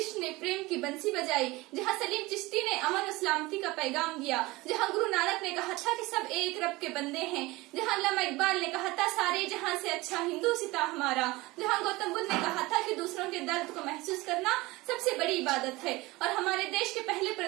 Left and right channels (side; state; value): left; quieter; 21.3 dB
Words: ने प्रेम की बंसी बजाई, जहाँ सलीम चिश्ती ने अमन और सलामती का पैगाम दिया, जहाँ गुरु नानक ने कहा था कि सब एक रब के बंदे हैं, जहाँ अल्लामा इकबाल ने कहा था सारे जहाँ से अच्छा हिंदू सिता हमारा, जहाँ गौतम बुद्ध ने कहा था कि दूसरों के दर्द को महसूस करना सबसे बड़ी इबादत है, और हमारे देश के पहले